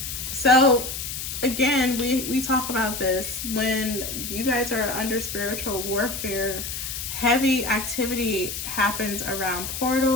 So again, we talk about this when you guys are under spiritual warfare. Heavy activity happens around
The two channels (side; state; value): left; noise; hiss, 6 dB below the sound